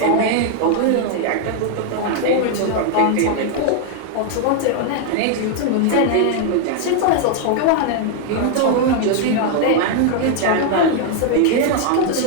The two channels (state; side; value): different; both; correlation 0.00